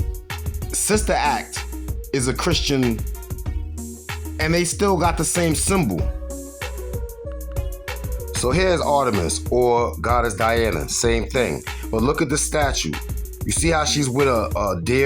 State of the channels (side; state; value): both; identical; correlation 1.00